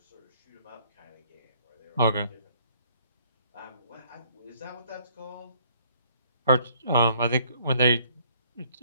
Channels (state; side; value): inverted; both; correlation -0.63